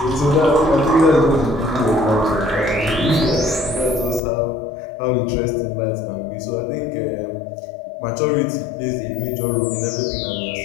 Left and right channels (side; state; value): right; drops out; at 4.2 s